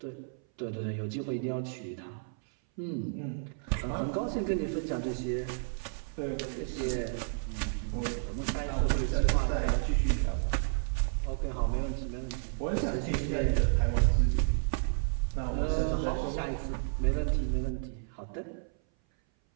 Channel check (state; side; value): silent; left; 57 dB below the other